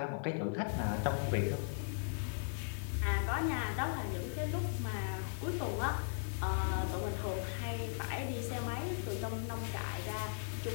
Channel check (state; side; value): silent; right; 53 dB below the other